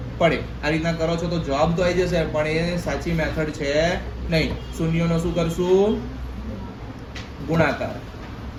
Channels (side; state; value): both; identical; correlation 1.00